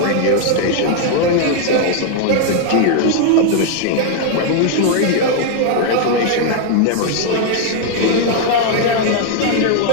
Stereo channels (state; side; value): different; both; correlation 0.00